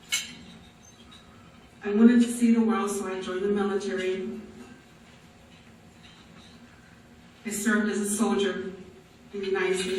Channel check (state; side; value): identical; both; correlation 1.00